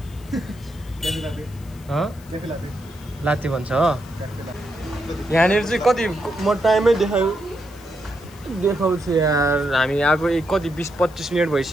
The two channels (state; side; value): noise; left; hiss, 24 dB below the sound